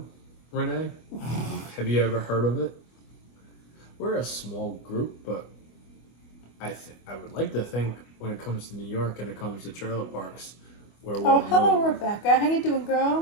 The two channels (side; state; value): right; late; 25 ms